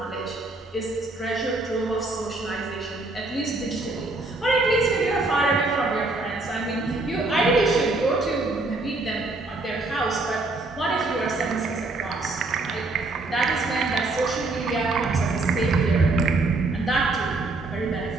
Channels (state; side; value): quieter; left; 3.2 dB